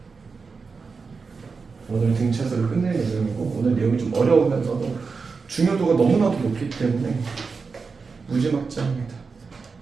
오늘 등차수를 끝낼 예정이고 오늘 내용이 좀 어려우면서도 중요도가 너무나도 높기 때문에 무지막지합니다.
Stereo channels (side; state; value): left; quieter; 4.8 dB